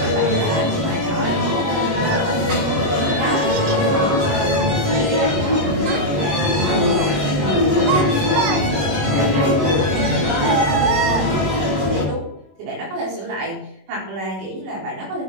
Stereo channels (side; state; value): left; late; 21 ms